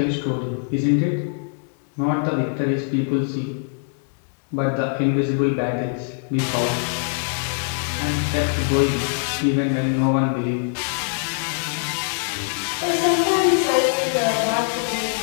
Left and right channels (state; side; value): silent; right; digital silence